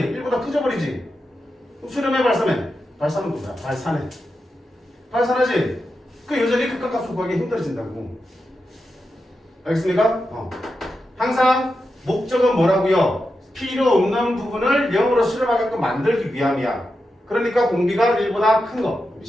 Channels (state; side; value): normal; both; correlation 0.89